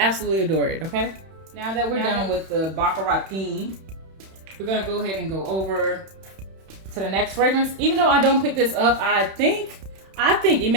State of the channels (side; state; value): left; late; 31 ms